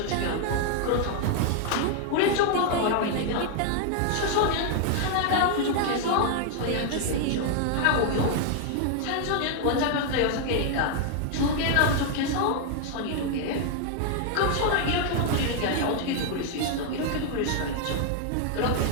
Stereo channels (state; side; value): different; both; correlation 0.00